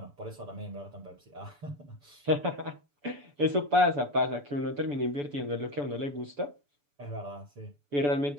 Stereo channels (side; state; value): left; late; 6.9 ms